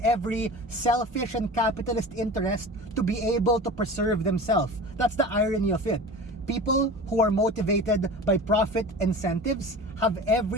every selfish and capitalist interest to be able to preserve themselves. That's the irony of it. People who are motivated by profit incentives have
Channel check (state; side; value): normal; both; correlation 0.35